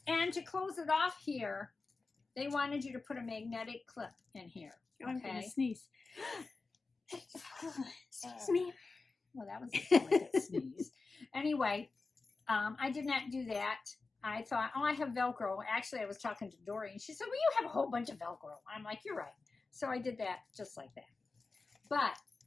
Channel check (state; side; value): quieter; right; 4.0 dB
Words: And to close it off here, they wanted you to put a magnetic clip in here. Oh, I'm okay? going to sneeze. Excuse me. Well, that was a delicate sneeze. Anyway, I did not do that. I thought, oh, I have Velcro. Actually, I was talking to Dory, and she said, well, you have a whole bunch of Velcro. I'm like, you're right. So I did that just like that. But